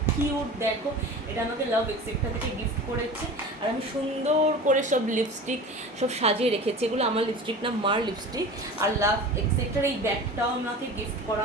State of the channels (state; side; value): normal; both; correlation 0.36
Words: কিউট দেখো, এটা আমাকে লাভ এক্সেট্রা থেকে গিফট করেছে। আর আমি সুন্দর করে সব লিপস্টিক সব সাজিয়ে রেখেছি। এগুলো আমার লিপস্টিক না, মার লিপস্টিক। আর লাভ এক্সেট্রার এই ব্যাগটাও আমাকে গিফট